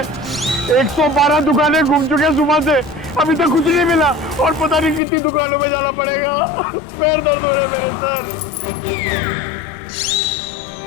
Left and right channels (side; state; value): right; drops out; at 5.0 s